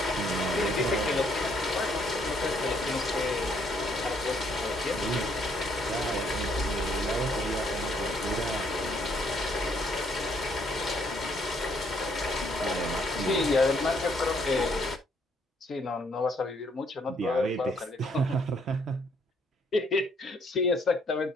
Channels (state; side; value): normal; both; correlation 0.68